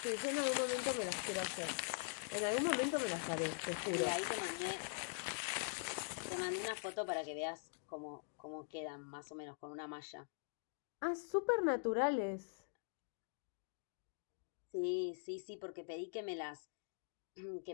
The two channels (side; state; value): right; silent; digital silence